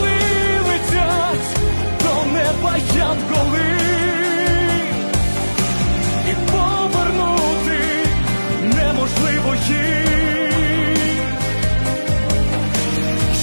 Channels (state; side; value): inverted; both; correlation -1.00